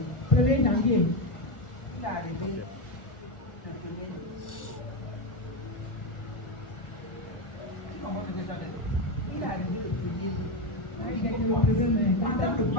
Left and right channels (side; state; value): right; late; 1.4 ms